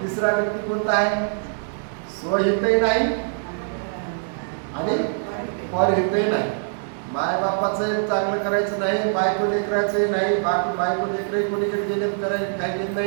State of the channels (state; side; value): silent; left; digital silence